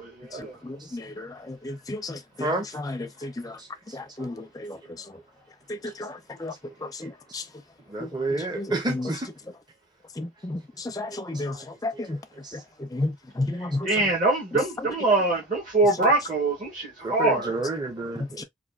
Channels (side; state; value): both; normal; correlation 0.34